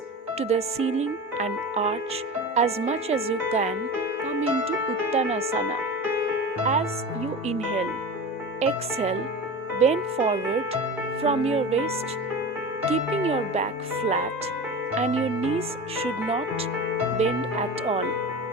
to the ceiling and arch as much as you can. Come into Uttanasana. As you inhale, exhale, bend forward from your waist, keeping your back flat and your knees should not bend at all,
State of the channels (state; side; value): normal; both; correlation 0.30